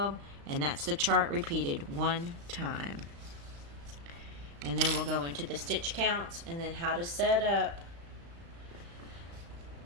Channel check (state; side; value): late; left; 35 ms